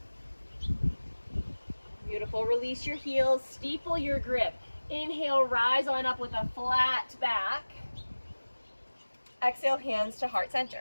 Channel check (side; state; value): both; inverted; correlation -1.00